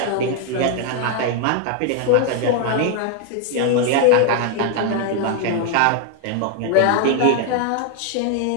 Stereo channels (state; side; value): different; both; correlation 0.00